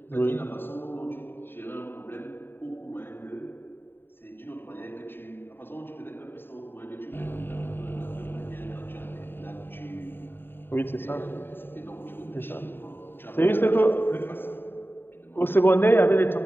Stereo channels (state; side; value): late; right; 0.10 ms